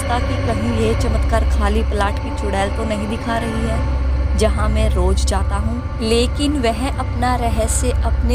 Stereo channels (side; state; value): both; identical; correlation 1.00